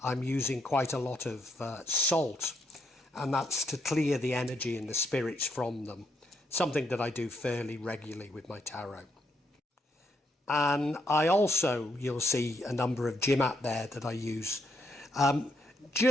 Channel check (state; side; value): normal; both; correlation 0.76